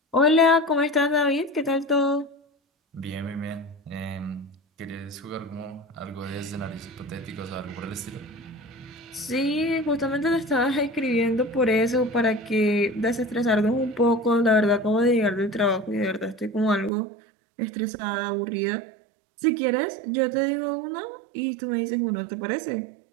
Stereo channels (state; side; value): drops out; left; at 16.9 s